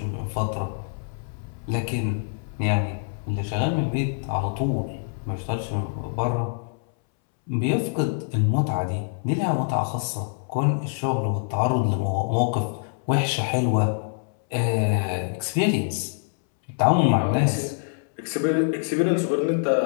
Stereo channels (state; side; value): silent; right; 62 dB below the other